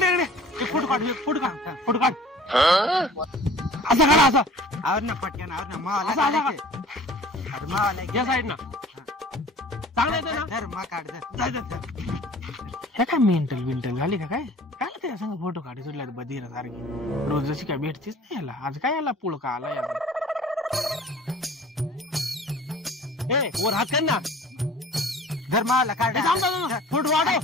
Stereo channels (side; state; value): both; normal; correlation 0.47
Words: इकडे फोटो काढ फोटो काढ फोटो काढ असं काढा असं आवर ना पटकन आवर ना मावाला या साईड ना चांगलं येतं ना धर मा काढ हे काय मेंटल बिंटल झाली का काय? काय त्या संग फोटो काढी सुटल्या बधीर सारखी रोज जशी काय भेटतीच नाही याला. आज काय याला पुळका आला याला. वर हात कर ना धर मावाला काढ फोटो